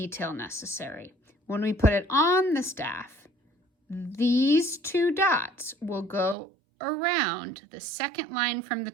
necessary. When we put it on the staff, these two dots will go around the second line from the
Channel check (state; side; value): drops out; left; at 6.4 s